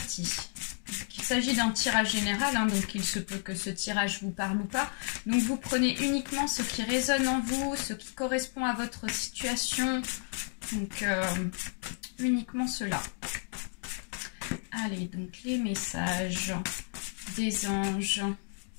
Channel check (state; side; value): silent; right; 56 dB below the other